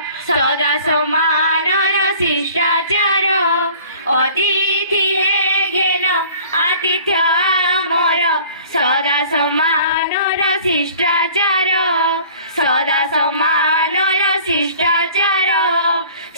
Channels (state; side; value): inverted; both; correlation -0.49